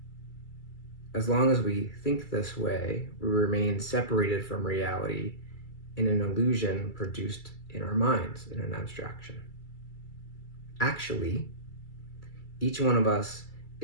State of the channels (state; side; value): late; right; 2.3 ms